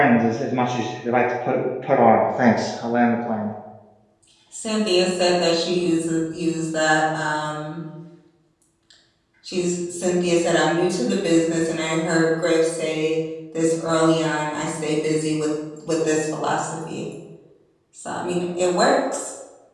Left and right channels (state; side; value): identical; both; correlation 1.00